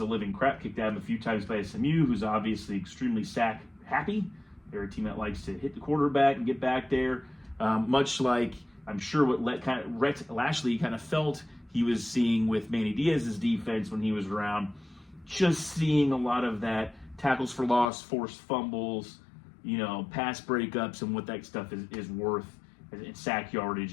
living crap kicked out of him a few times by SMU, who's obviously extremely sack happy. They're a team that likes to hit the quarterback and get back there. Much like, I'm sure what Rhett Lashley kind of felt he was seeing with Manny Diaz's defense when he was around. Just seeing a lot of that tackles for loss, forced fumbles, pass breakups and what that stuff is worth, and sack yardage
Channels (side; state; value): right; drops out; at 17.9 s